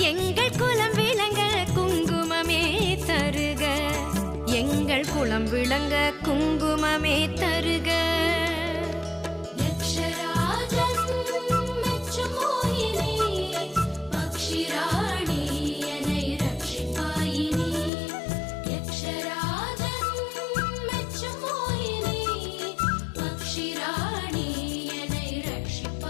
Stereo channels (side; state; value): right; drops out; at 17.9 s